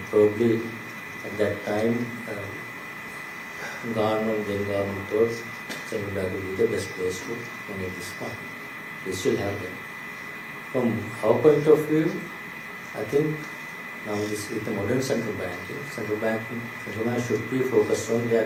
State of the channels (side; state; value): both; identical; correlation 1.00